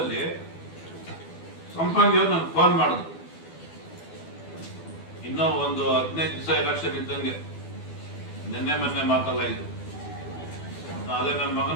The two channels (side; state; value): right; late; 12 ms